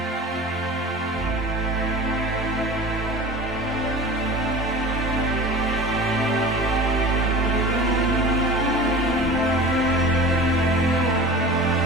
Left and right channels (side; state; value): both; normal; correlation 0.36